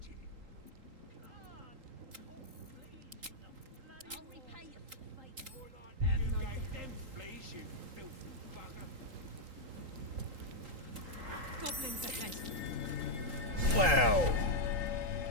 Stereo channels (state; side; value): late; left; 3.8 ms